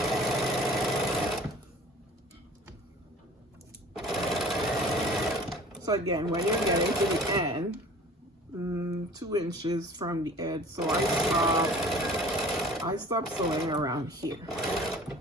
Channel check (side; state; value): both; normal; correlation 0.46